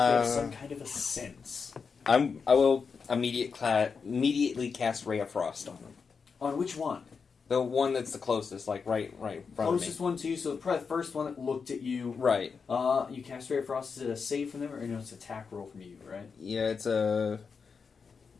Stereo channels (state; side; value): quieter; right; 5.5 dB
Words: some kind of a sense. I will immediately cast Ray of Frost on them. On which one? The one that's the closest, like right in front Closest of me. one to you, so probably the first one that looked at you. Right. You cast Ray of Frost. Is it a save from them, or no? It's an attack roll from you, right? Yeah, it's a.